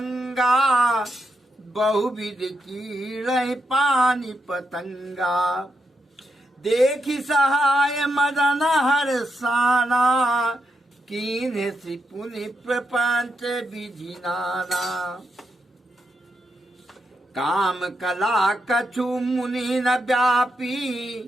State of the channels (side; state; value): both; normal; correlation 0.83